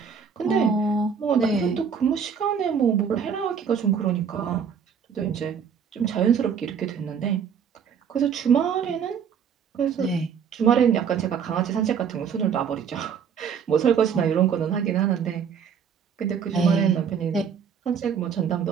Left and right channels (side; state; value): left; quieter; 7.1 dB